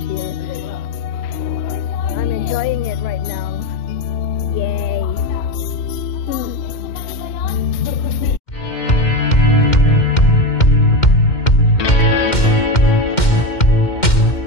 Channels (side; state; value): right; late; 2.1 ms